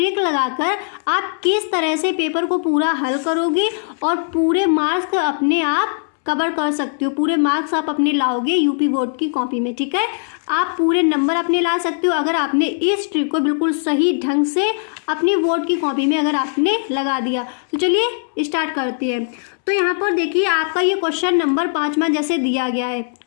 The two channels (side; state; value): right; silent; 66 dB below the other